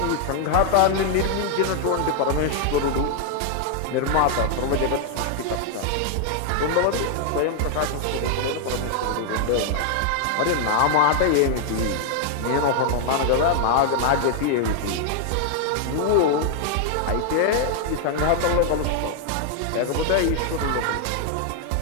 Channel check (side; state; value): both; different; correlation 0.00